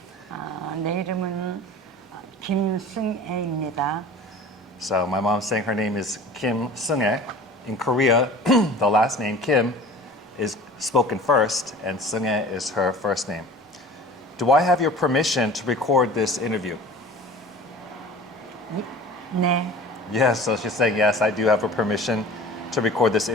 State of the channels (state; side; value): normal; both; correlation 0.41